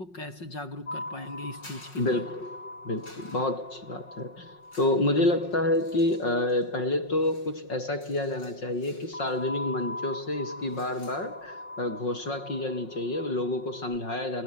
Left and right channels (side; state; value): right; late; 5.5 ms